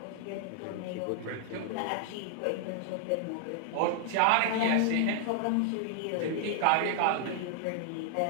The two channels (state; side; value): different; both; correlation 0.00